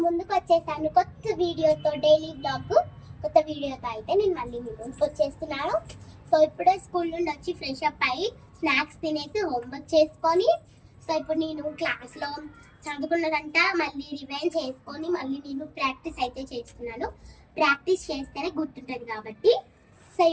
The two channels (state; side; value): identical; both; correlation 1.00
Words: ముందుకు వచ్చేసాను కొత్త వీడియోతో. డైలీ బ్లాగ్ కొత్త వీడియోతో అయితే నేను మళ్ళీ మీ ముందుకు వచ్చేస్తున్నాను. సో ఇప్పుడే స్కూల్ నుండి వచ్చి ఫ్రెష్ అప్ అయ్యి స్నాక్స్ తినేసి హోంవర్క్ చేసుకొని, సో ఇప్పుడు నేను క్లాస్లో చదువుకున్నదంట మళ్ళీ రివైండ్ చేసుకొని మళ్ళీ నేను ప్రాక్టీస్ అయితే చేస్తున్నాను. ప్రాక్టీస్ చేస్తేనే గుర్తుంటుంది కాబట్టి. సో